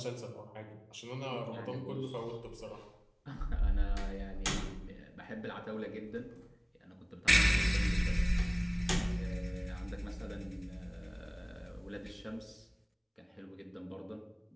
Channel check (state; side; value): identical; both; correlation 1.00